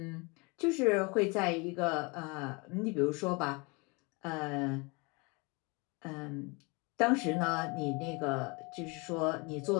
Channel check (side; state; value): right; quieter; 29.0 dB